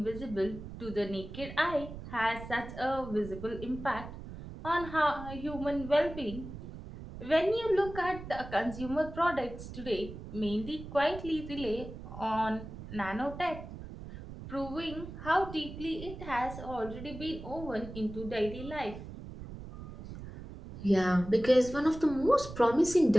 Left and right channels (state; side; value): noise; right; rumble, 11 dB below the sound